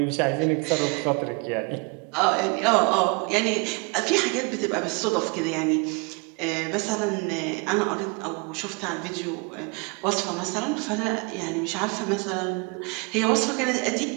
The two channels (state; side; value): quieter; left; 31.0 dB